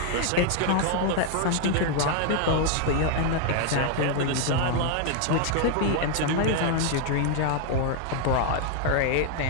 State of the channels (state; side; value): different; both; correlation 0.00